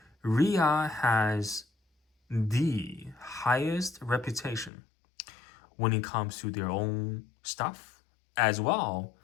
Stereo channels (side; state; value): right; drops out; at 4.7 s